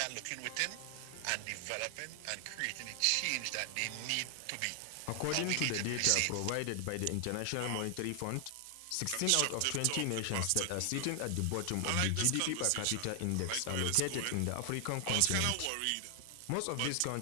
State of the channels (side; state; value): both; different; correlation 0.00